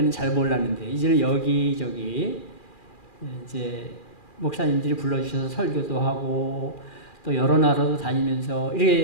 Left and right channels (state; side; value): late; right; 2.4 ms